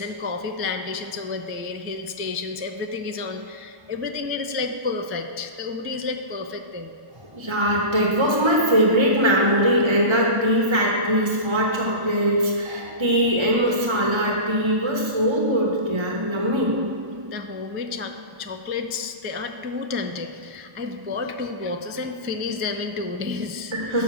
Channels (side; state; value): left; late; 1.3 ms